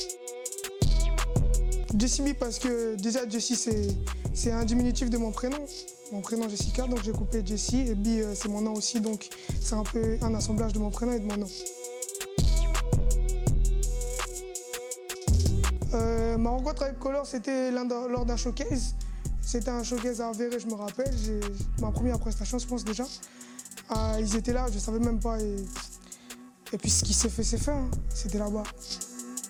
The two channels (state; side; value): identical; both; correlation 1.00